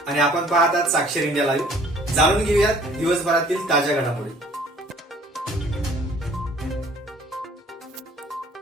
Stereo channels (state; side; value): normal; both; correlation 0.55